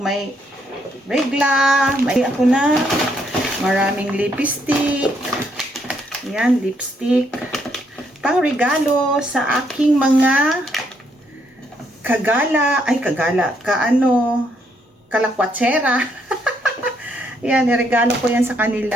regla, may ako na maraming lipstick. Yan, lipstick. Pang regalo sa aking mga kalakwatsera. Yan, niregalo ko yan sa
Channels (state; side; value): normal; both; correlation 0.73